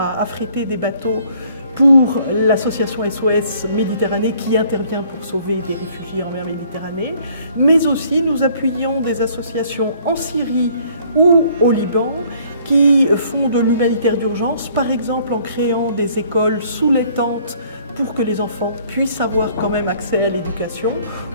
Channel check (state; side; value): inverted; both; correlation -0.60